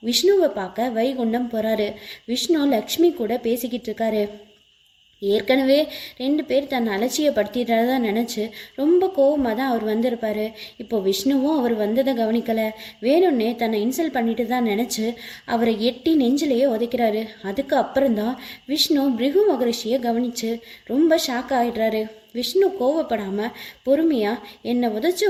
விஷ்ணுவை பார்க்க வைகுண்டம் போறாரு. விஷ்ணு லக்ஷ்மி கூட பேசிக்கிட்டு இருக்காரு. ஏற்கனவே 2 பேர் தன்னை அலட்சியப்படுத்திடுறதா நினச்சி ரொம்ப கோவமாக தான் அவர் வந்திருப்பாரு. இப்போ விஷ்ணுவும் அவர் வந்ததை கவனிக்கலை. வேணும்னே தன்னை இன்சல்ட் பண்ணிட்டு தான் நினச்சி அவரை எட்டி நெஞ்சிலேயே உதைக்கிறாரு. அதுக்கு அப்புறம்தான் விஷ்ணு பிருகு மகரிஷியை கவனித்து ரொம்ப ஷாக் ஆகிடுறாரு. விஷ்ணு கோவப்படாமல் பொறுமையாக, என்னை உதைச்ச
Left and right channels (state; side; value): identical; both; correlation 1.00